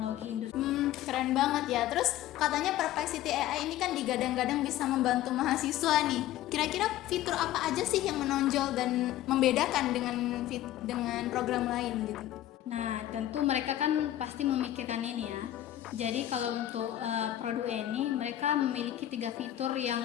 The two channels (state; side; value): quieter; right; 13.4 dB